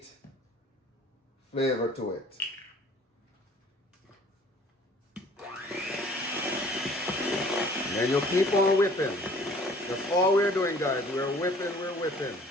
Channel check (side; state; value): both; normal; correlation 0.53